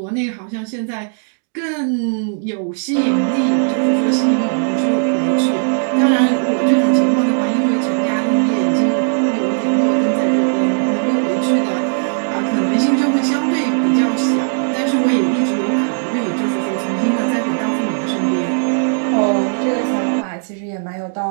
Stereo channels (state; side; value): silent; left; digital silence